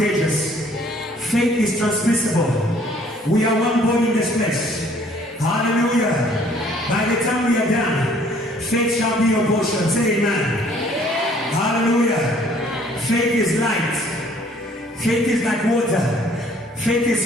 Faith is transmissible. We are one body in this place. Hallelujah. By the time we are done, faith shall be your portion. Say amen. Hallelujah. Faith is light. Faith is like water. Faith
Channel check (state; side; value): normal; both; correlation 0.58